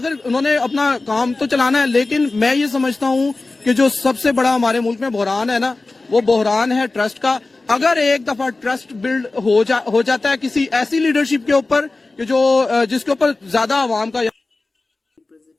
انہوں نے اپنا کام تو چلانا ہے لیکن میں یہ سمجھتا ہوں کہ جو سب سے بڑا ہمارے ملک میں بحران ہے نا وہ بحران ہے ٹرسٹ کا اگر ایک دفعہ ٹرسٹ بلڈ ہو جاتا ہے کسی ایسی لیڈرشپ کے اوپر کہ جو جس کے اوپر زیادہ عوام کا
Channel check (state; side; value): quieter; right; 3.4 dB